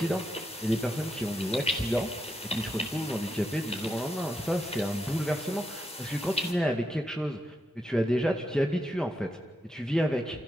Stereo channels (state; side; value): normal; both; correlation 0.83